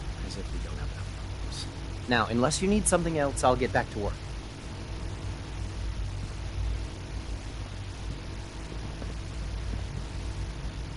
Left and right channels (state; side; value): identical; both; correlation 1.00